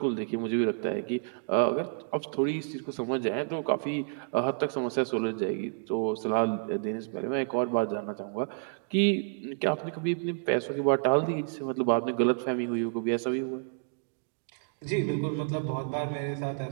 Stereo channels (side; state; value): left; silent; digital silence